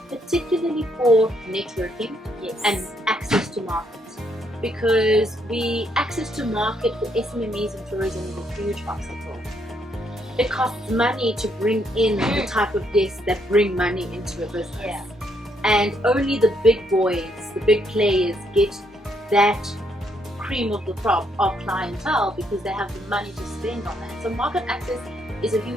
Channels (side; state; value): both; normal; correlation 0.73